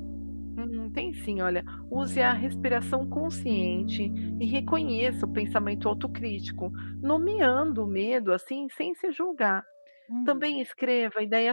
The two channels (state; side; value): inverted; both; correlation -1.00